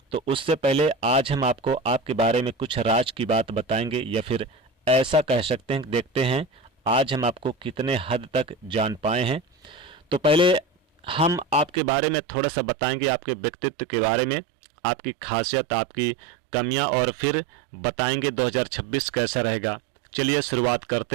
तो उससे पहले आज हम आपको आपके बारे में कुछ राज की बात बताएंगे, या फिर ऐसा कह सकते हैं, देखते हैं आज हम आपको कितने हद तक जान पाए हैं। तो पहले हम आपके बारे में थोड़ा सा बताएंगे, आपके व्यक्तित्व के बारे में, आपकी खासियत, आपकी कमियां, और फिर बताएंगे 2026 कैसा रहेगा। चलिए शुरुआत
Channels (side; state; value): left; drops out; at 11.8 s